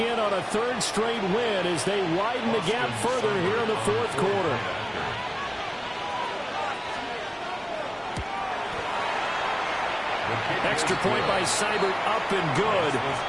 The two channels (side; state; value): both; identical; correlation 1.00